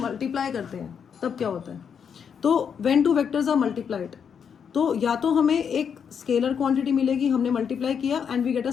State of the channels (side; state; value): right; quieter; 7.2 dB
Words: करते हैं तब क्या होता है, तो when two vectors are multiplied, तो या तो हमें एक स्केलर क्वांटिटी मिलेगी, हमने मल्टीप्लाई किया and we get a